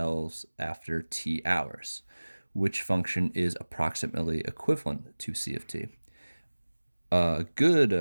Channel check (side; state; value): both; inverted; correlation -1.00